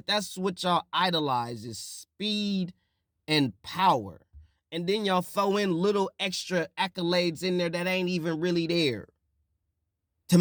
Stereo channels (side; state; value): both; identical; correlation 1.00